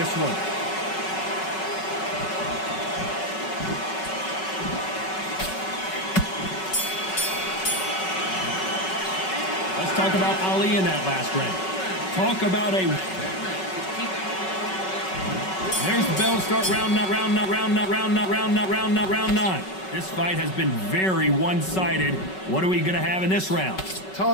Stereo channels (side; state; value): right; late; 5.3 ms